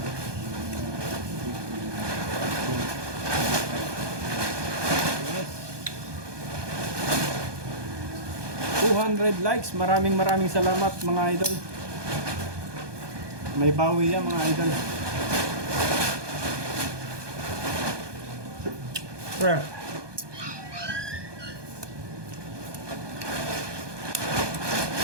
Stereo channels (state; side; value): late; left; 1.2 ms